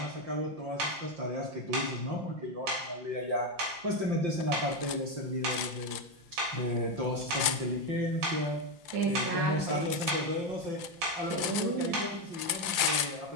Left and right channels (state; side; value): late; left; 5.8 ms